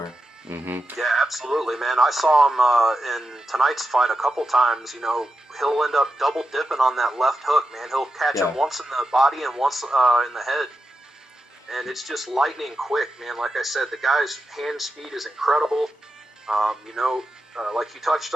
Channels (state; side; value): normal; both; correlation 0.89